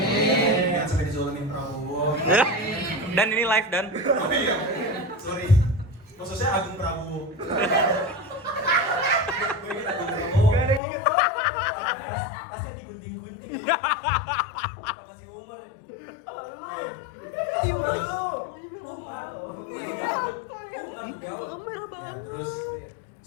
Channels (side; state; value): right; drops out; at 10.8 s